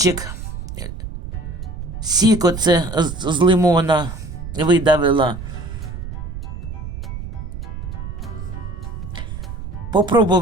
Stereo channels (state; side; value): noise; right; rumble, 8 dB below the sound